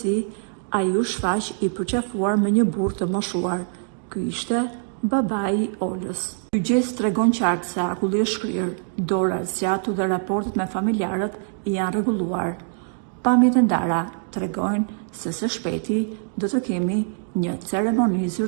ai u shfaq i përqafuar me një burr të moshuar. Ky ishte babai i Olës. Ky gjest tregon qartë se akulli është shkrirë, dora zgjatu dhe raportet me familjarët janë rregulluar. Pamjet e ndara tregojnë se së shpejti do të kemi një ceremoni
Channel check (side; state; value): left; silent; digital silence